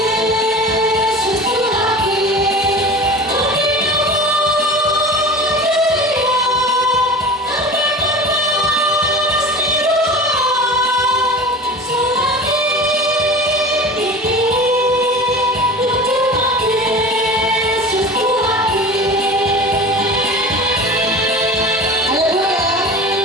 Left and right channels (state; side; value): normal; both; correlation 0.35